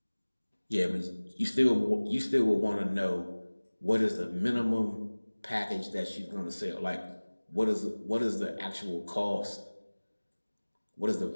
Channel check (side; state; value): both; inverted; correlation -1.00